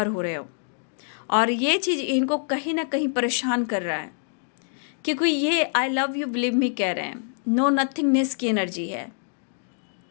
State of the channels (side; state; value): right; silent; 61 dB below the other